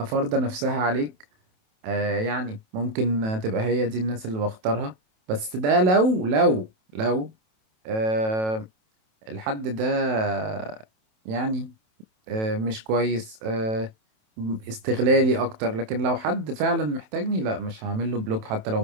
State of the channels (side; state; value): left; late; 27 ms